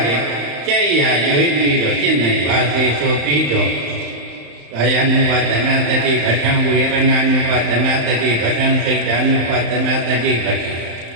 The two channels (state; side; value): late; left; 35 ms